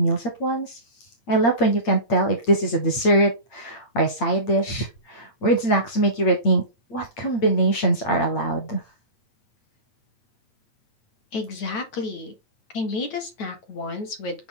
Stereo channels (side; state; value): right; late; 8.7 ms